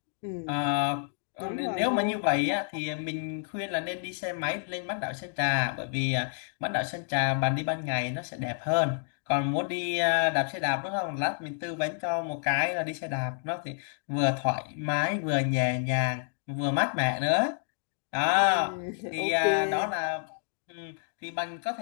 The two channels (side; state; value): right; silent; 58 dB below the other